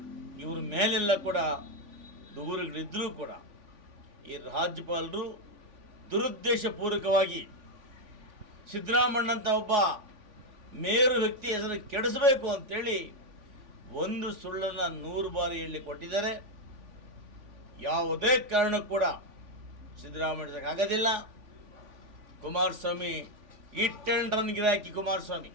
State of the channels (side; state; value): left; late; 3.5 ms